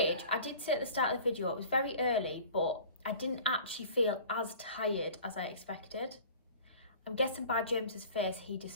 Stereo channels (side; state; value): both; inverted; correlation -0.43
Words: I did say at the start of the video, it was very early, but I didn't actually feel as tired as I expected. I'm guessing by James's face, he